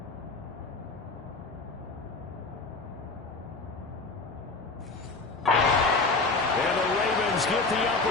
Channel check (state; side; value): quieter; right; 3.7 dB